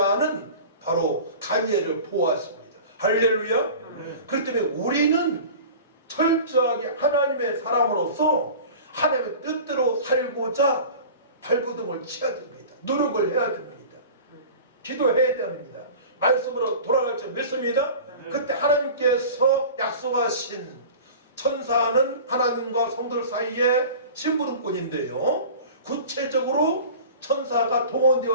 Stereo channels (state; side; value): inverted; both; correlation -0.38